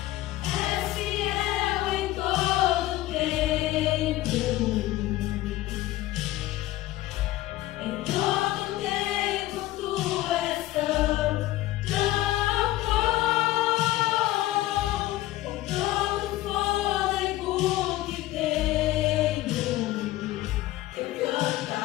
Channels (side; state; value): right; quieter; 16.3 dB